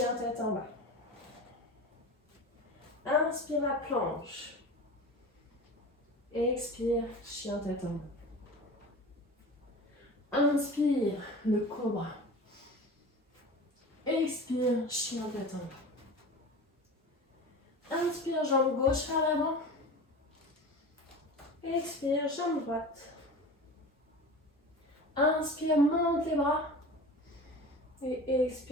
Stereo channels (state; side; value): normal; both; correlation 0.34